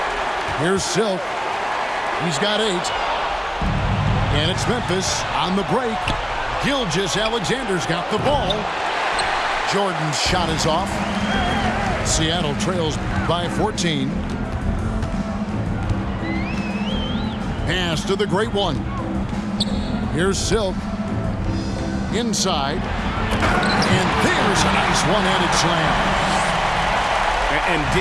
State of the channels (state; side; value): identical; both; correlation 1.00